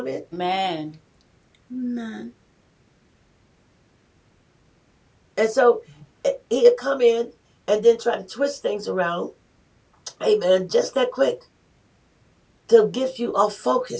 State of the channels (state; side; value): identical; both; correlation 1.00